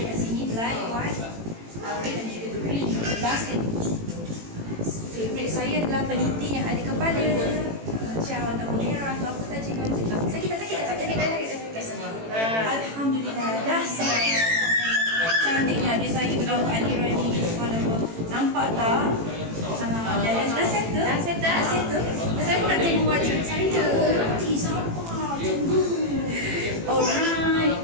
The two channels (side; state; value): left; late; 18 ms